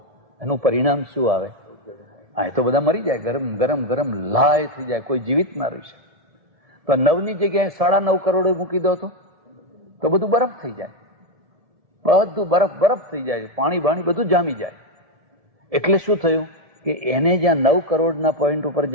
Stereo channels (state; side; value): late; left; 1.7 ms